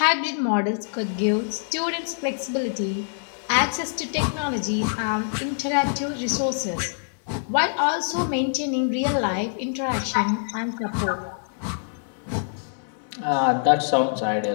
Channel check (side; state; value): right; silent; digital silence